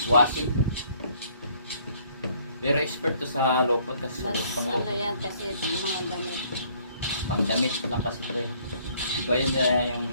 Washing. Pero expert to sa lopot kasi Mas pang ano yan kasi yung mga damit. pangdamit lang kasi ito eh. Iba yun yung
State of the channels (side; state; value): both; inverted; correlation -0.62